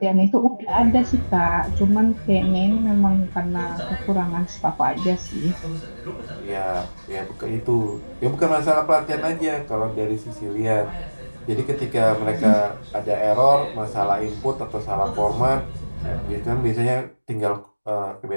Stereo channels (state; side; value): inverted; both; correlation -1.00